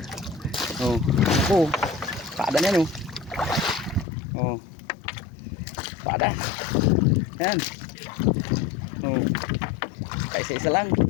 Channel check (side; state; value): right; drops out; at 4.0 s